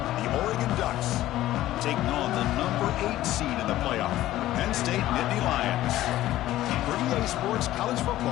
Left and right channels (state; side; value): quieter; right; 14.7 dB